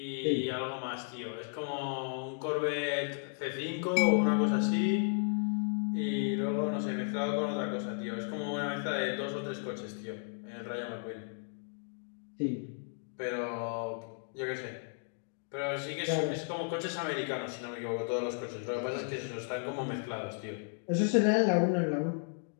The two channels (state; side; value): silent; right; 55 dB below the other